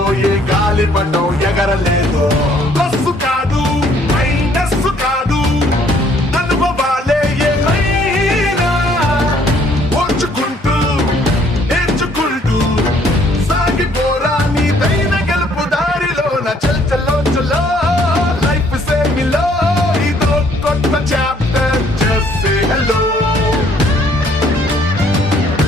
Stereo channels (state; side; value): normal; both; correlation 0.63